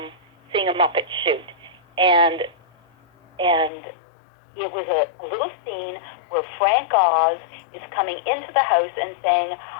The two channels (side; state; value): right; drops out; at 3.7 s